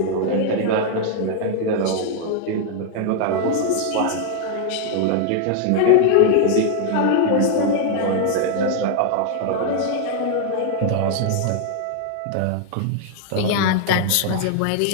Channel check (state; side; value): different; both; correlation 0.00